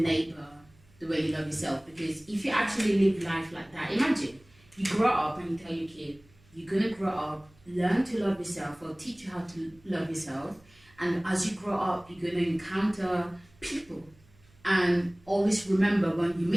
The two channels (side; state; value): right; noise; hum, 29 dB below the sound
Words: the way you love yourself. Because if you actually live life like that, imagine you grow up and you tell your kid, you're going to grow up, learn to love yourself, or teach you how to love yourself. And as you grow up, you're going to encounter people. And always remember, when you